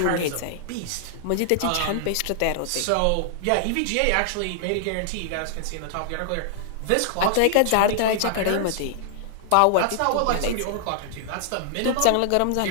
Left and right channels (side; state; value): both; different; correlation -0.01